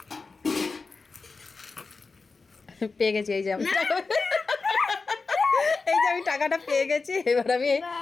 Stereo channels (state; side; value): quieter; right; 4.2 dB